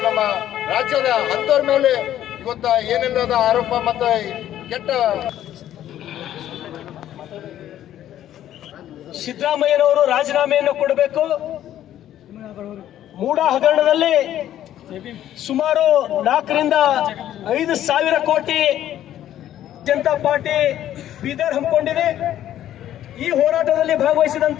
ನಮ್ಮ ರಾಜ್ಯದ ಅಂತವ್ರ ಮೇಲೆ ಇವತ್ತ ಏನೆಲ್ಲದ ಆರೋಪ ಮತ್ತು ಕೆಟ್ಟ ಸಿದ್ದರಾಮಯ್ಯನವರು ರಾಜೀನಾಮೆಯನ್ನು ಕೊಡಬೇಕು. ಮೂಡ ಹಗರಣದಲ್ಲಿ ಸುಮಾರು 4 ರಿಂದ 5 ಸಾವಿರ ಕೋಟಿ ಜನತಾ ಪಾರ್ಟಿ ಬೀದರ್ ಹಮ್ಮಿಕೊಂಡಿದೆ. ಈ ಹೋರಾಟದಲ್ಲಿ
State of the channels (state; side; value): quieter; right; 11.9 dB